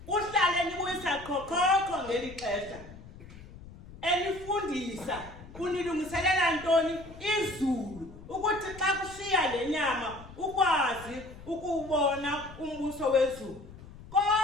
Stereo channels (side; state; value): left; noise; rumble, 17 dB below the sound